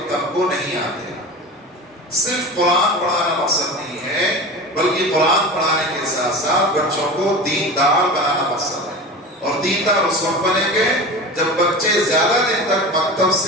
کو نہیں آتے۔ صرف قرآن پڑھانا مقصد نہیں ہے، بلکہ قرآن پڑھانے کے ساتھ ساتھ بچوں کو دیندار بنانا مقصد ہے، اور دیندار اس وقت بنیں گے جب بچے زیادہ دن تک مکتب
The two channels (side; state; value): both; normal; correlation 0.31